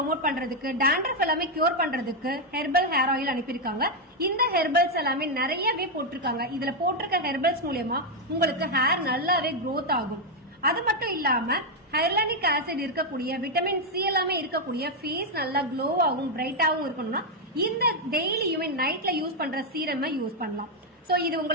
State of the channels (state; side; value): normal; both; correlation 0.01